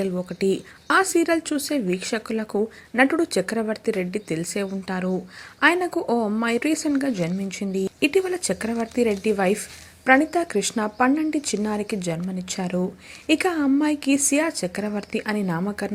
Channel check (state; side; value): identical; both; correlation 1.00